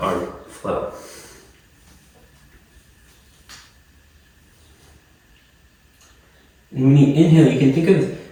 our flow. And when you inhale, you can think of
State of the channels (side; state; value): both; identical; correlation 1.00